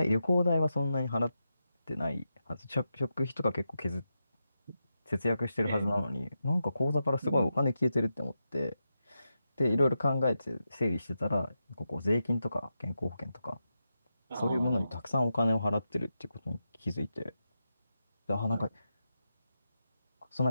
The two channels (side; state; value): both; inverted; correlation -0.88